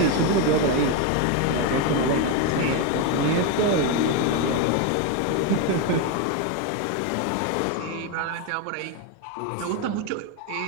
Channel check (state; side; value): different; both; correlation 0.02